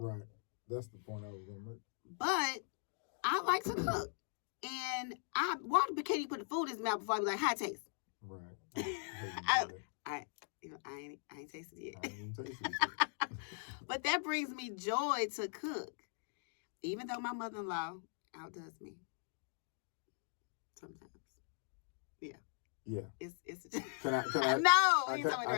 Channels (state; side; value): silent; right; digital silence